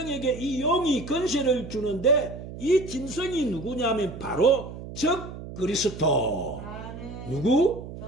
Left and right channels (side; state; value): right; noise; hum, 11 dB below the sound